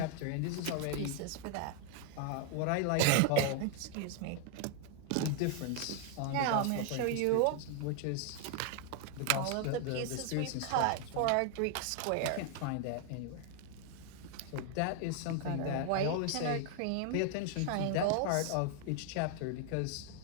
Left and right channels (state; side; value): different; both; correlation 0.00